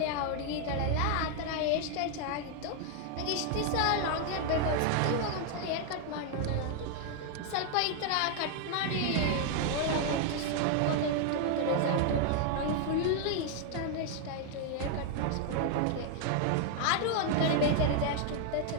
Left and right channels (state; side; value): different; both; correlation 0.00